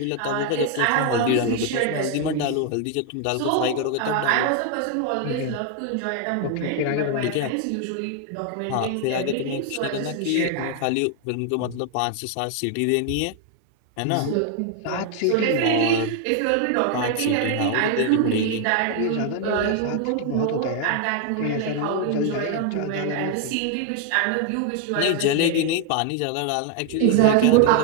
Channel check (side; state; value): both; different; correlation 0.00